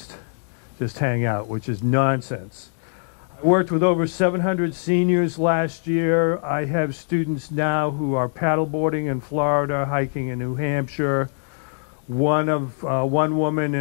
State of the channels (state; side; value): silent; right; 62 dB below the other